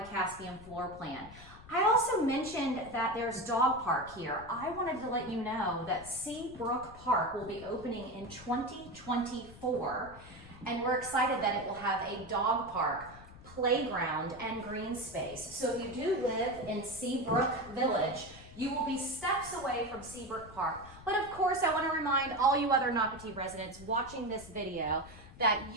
Caspian floor plan. I also mentioned that there's dog park here. I wanted to let you know that Seabrook Park will be opening in 2024. And we're excited that it will have a dog park, playground, and green space. So if you do live in Seabrook Village, you will be steps away from Seabrook Park. But of course, I want to remind all you other Nocatee residents watching this video that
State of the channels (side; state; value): left; noise; rumble, 18 dB below the sound